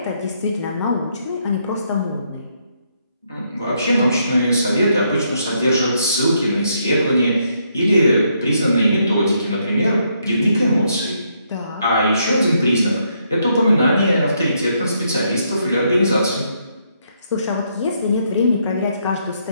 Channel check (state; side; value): inverted; both; correlation -0.75